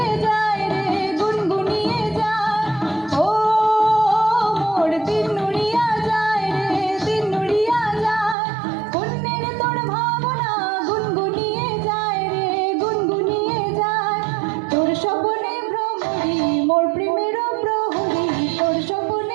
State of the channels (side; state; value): left; drops out; at 8.3 s